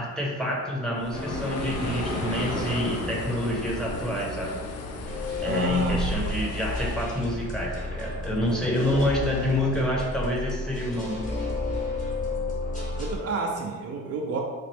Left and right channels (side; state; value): both; normal; correlation 0.47